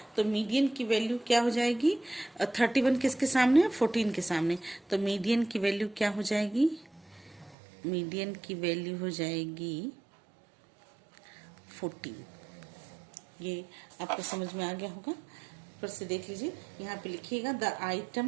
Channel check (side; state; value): left; drops out; at 7.6 s